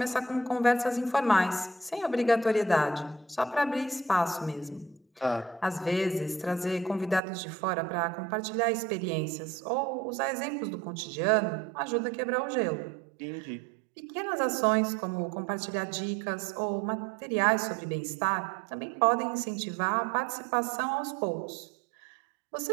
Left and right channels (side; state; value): left; drops out; at 7.2 s